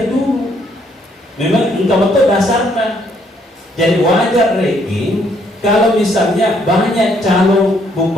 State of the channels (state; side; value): normal; both; correlation 0.68